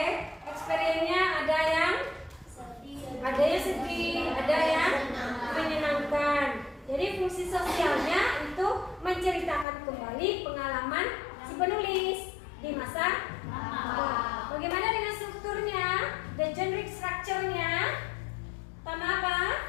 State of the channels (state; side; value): drops out; right; at 9.7 s